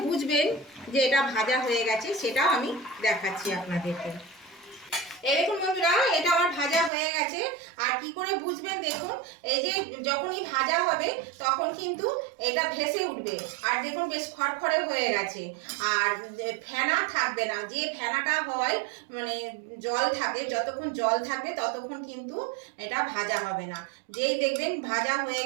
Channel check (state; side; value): drops out; left; at 6.9 s